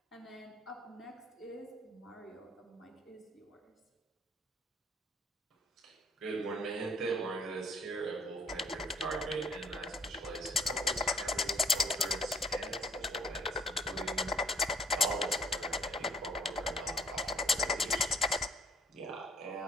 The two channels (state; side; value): normal; both; correlation 0.62